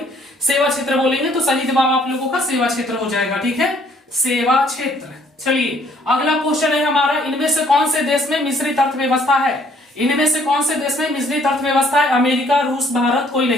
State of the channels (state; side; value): normal; both; correlation 0.62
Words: बोलेंगे। तो सही जवाब आप लोगों का सेवा क्षेत्र हो जाएगा, ठीक है, सेवा क्षेत्र। चलिए अगला क्वेश्चन है हमारा, इनमें से कौन से देश में मिश्रित अर्थव्यवस्था है? इनमें से कौन से देश में मिश्रित अर्थव्यवस्था है? अमेरिका, रूस, भारत, कोई